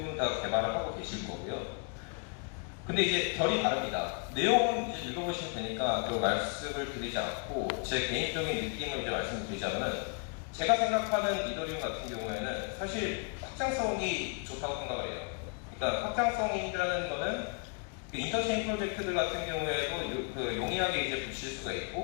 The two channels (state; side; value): quieter; right; 37.3 dB